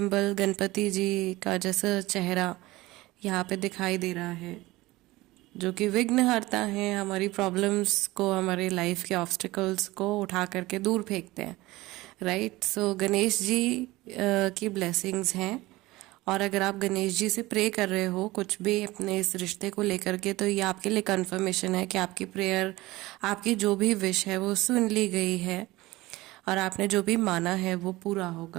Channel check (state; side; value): quieter; left; 19.4 dB